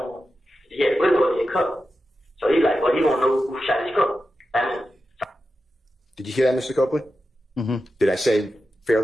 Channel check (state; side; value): normal; both; correlation 0.91